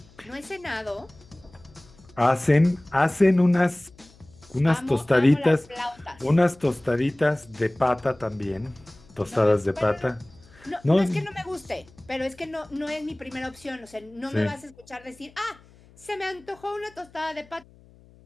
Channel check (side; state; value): left; noise; hum, 26 dB below the sound